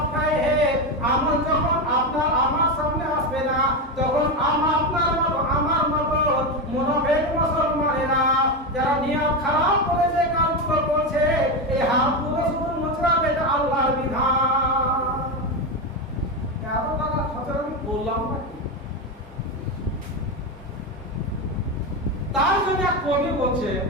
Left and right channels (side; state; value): both; normal; correlation 0.14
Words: আমল যখন আপনার আমার সামনে আসবে না, তখন আপনার মতো আমার মতো মুনাফিক মুসলমানেরা যারা নিয়ত খারাপ করে যে কাজগুলো করছে, এই হাতগুলো শুধু মুচড়াবে, এটা আল্লাহর বিধান। এত টাকা খরচ আমি বললাম না। তার জন্য এক কবি বলছে,